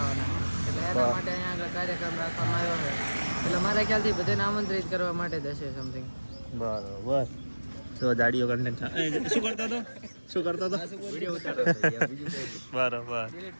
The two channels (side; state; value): both; inverted; correlation -1.00